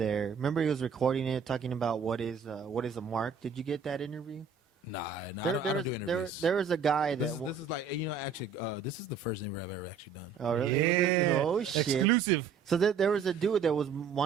Remember, he was recording it, talking about what is a mark. Did you get that interview? Nah, I don't do interviews. There was a guy that this is like actually this is the first interview I've ever actually done. Oh really? Yeah. Oh shit! Exclusive. So there was a dude that was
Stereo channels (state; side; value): quieter; left; 6.0 dB